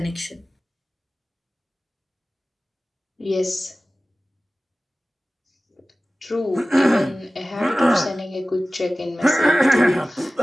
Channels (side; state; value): both; normal; correlation 0.97